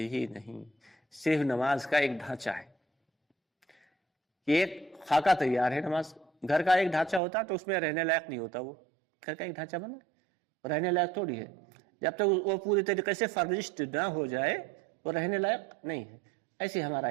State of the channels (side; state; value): left; drops out; at 7.2 s